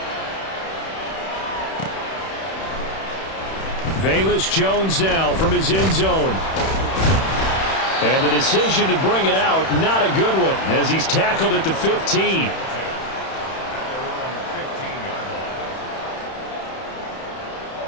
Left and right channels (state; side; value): late; right; 31 ms